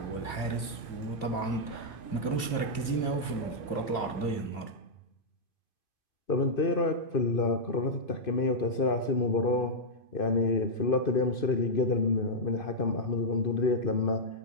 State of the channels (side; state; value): right; late; 2.5 ms